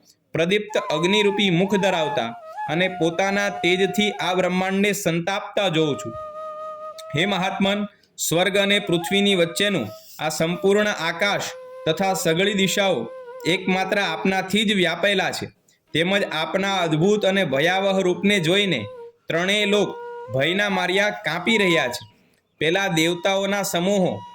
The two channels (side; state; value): both; identical; correlation 1.00